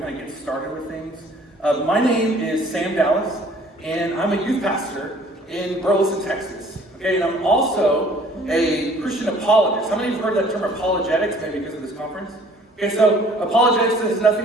of get started with things. My name is Sam Dallas, and I'm a youth pastor in Burleson, Texas. Okay, and I'm also a Christian apologist. How many of you have heard that term apologetics, maybe because of this conference? Okay, so apologetics has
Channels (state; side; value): normal; both; correlation 0.54